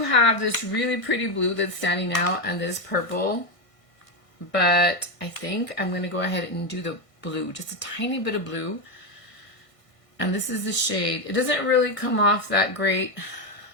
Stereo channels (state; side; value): late; right; 1.6 ms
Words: have this really pretty blue that's standing out and this purple, but I think I'm going to go ahead and do the blue, just a tiny bit of blue. And this is the shade. It doesn't really come off that great